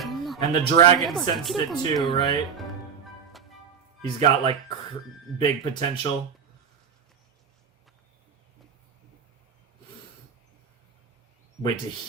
And the dragon sensed it too, right? He's got like big potential. Wait, did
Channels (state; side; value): quieter; left; 6.8 dB